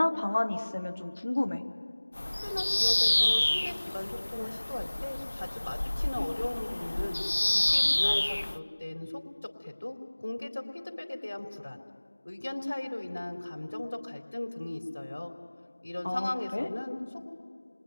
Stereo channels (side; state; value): both; inverted; correlation -1.00